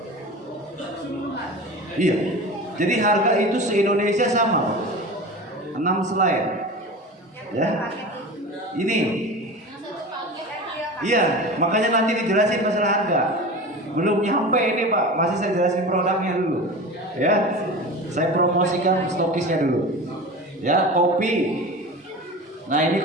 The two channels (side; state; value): both; normal; correlation 0.32